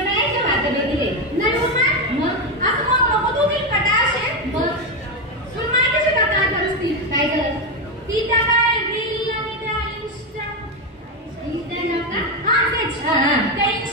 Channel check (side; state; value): both; normal; correlation 0.09